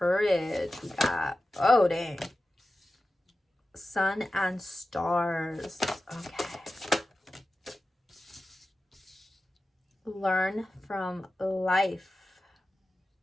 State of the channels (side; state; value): both; normal; correlation 0.94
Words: We got, oh dang, sun and stars. Okay. Learn from life.